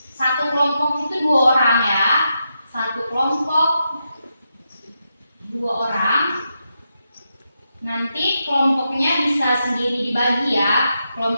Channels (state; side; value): inverted; both; correlation -0.85